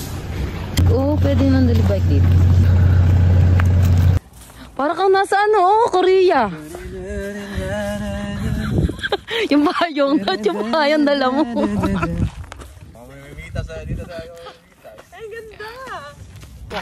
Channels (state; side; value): identical; both; correlation 1.00